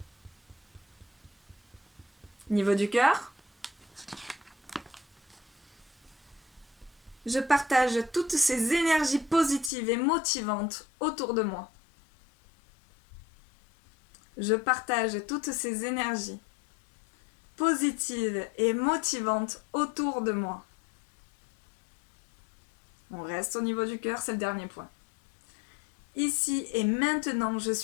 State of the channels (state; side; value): drops out; right; at 9.7 s